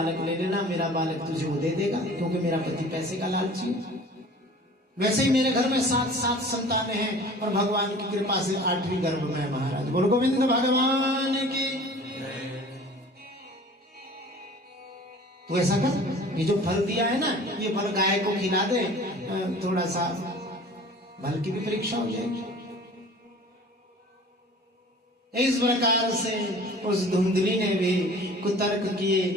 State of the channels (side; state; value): both; normal; correlation 0.45